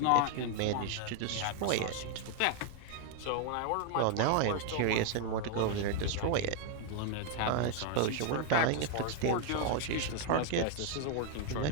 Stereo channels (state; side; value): different; both; correlation 0.00